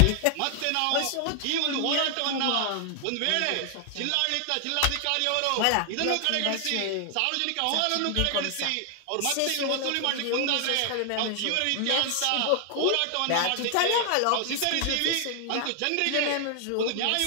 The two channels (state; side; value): different; both; correlation 0.00